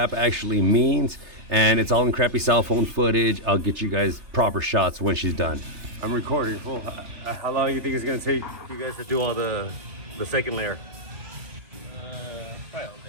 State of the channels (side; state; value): left; late; 3.3 ms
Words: actually means, and it's all in crappy cell phone footage. I'll get you guys proper shots when she's done. I'm recording. Full. How long do you think it's gonna take you guys to do all the second layer? Probably all